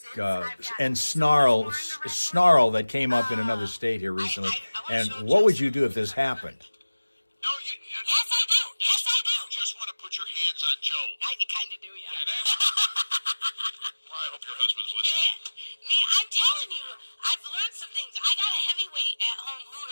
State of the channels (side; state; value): both; inverted; correlation -1.00